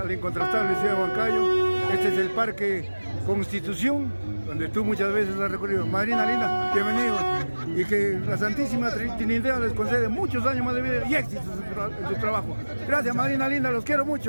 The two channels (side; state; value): both; inverted; correlation -1.00